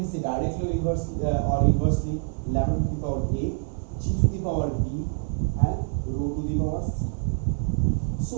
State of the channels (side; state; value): left; silent; 61 dB below the other